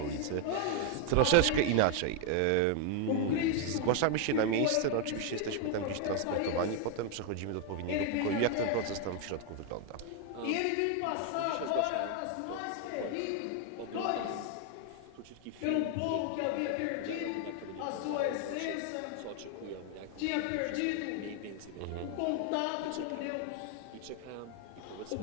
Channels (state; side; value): different; both; correlation 0.00